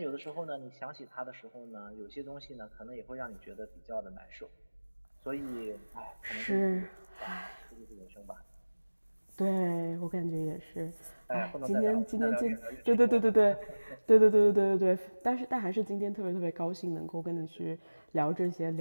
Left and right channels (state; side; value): inverted; both; correlation -1.00